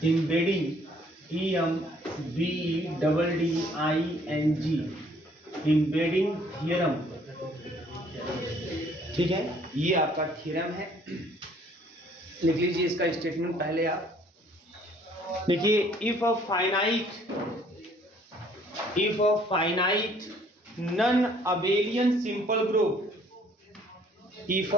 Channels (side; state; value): both; normal; correlation 0.60